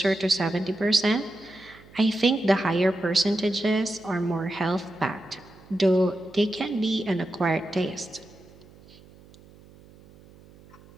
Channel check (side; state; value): right; noise; hum, 24 dB below the sound